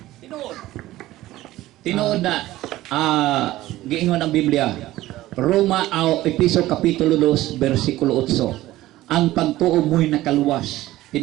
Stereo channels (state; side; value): quieter; left; 16.1 dB